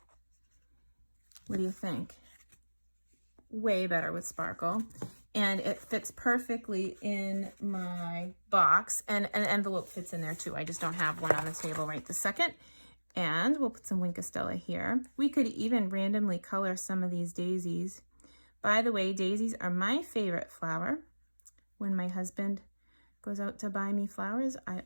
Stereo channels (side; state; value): both; inverted; correlation -1.00